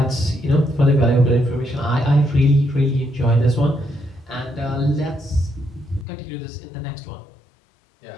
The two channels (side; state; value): right; drops out; at 6.1 s